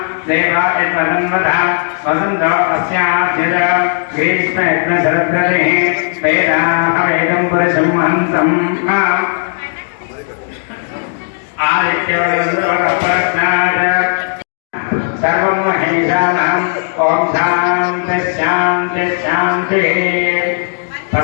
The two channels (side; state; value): right; silent; digital silence